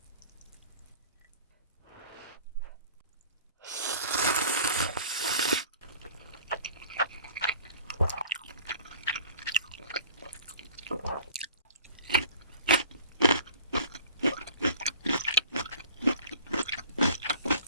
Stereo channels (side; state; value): both; inverted; correlation -0.46